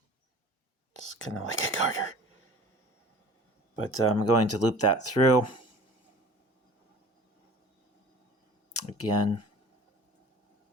It's kind of like a garter. But I'm going to loop that through. Again.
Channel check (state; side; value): normal; both; correlation 0.43